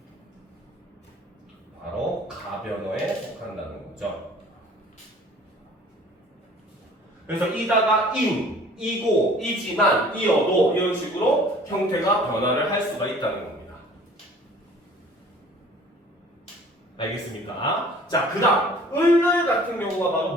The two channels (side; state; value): both; normal; correlation 0.50